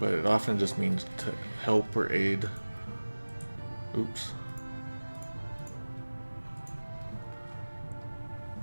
it often just means to help or aid. Oops.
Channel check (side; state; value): both; inverted; correlation -1.00